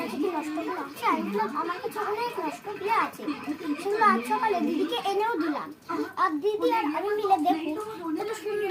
কি নষ্ট ক্লে আছে? আমি বললাম আমার কাছে অনেক নষ্ট ক্লে আছে। সেগুলো আজ সকালে দিদিকে এনেও দিলাম। আর দিদি আর আমি মিলে দেখুন কত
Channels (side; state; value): both; identical; correlation 1.00